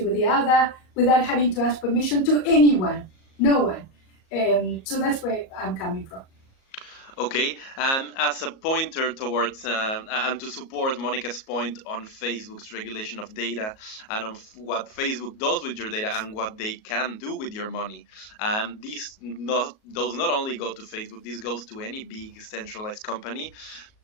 with the other without having to ask permission to anyone, no one. So that's where I'm coming from. Okay, and as a pointer towards and to support Monica's point on Facebook's regulation of data and on what Facebook does with your data and what they can do with your money, and this does not only go to Facebook, this goes to any big centralized company.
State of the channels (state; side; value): late; right; 37 ms